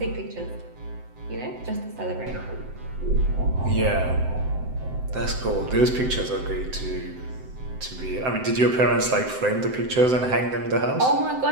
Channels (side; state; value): left; late; 7.8 ms